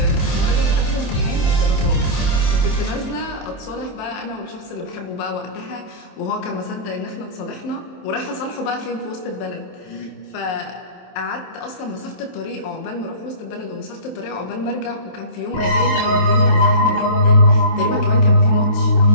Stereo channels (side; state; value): right; late; 23 ms